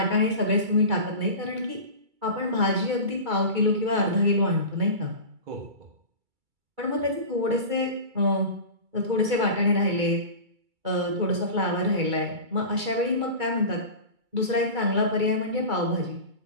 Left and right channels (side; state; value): left; late; 2.3 ms